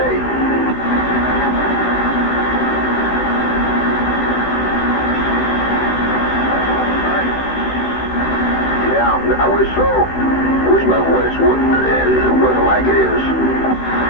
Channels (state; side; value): late; right; 16 ms